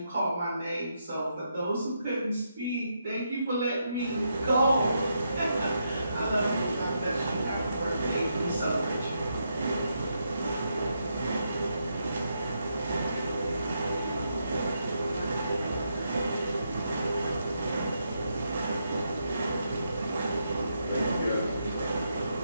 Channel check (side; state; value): both; inverted; correlation -0.81